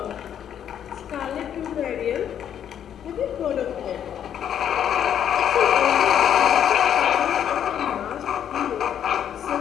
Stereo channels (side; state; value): right; quieter; 9.4 dB